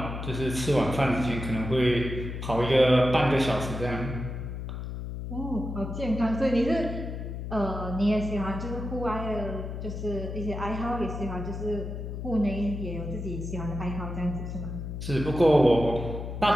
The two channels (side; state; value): left; noise; hum, 6 dB below the sound